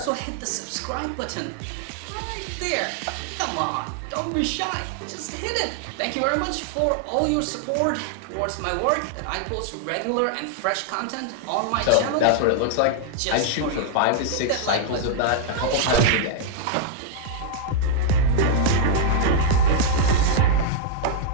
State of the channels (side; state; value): both; different; correlation -0.01